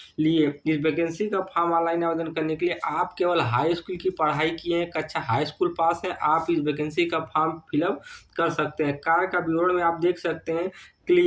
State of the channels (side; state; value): both; identical; correlation 1.00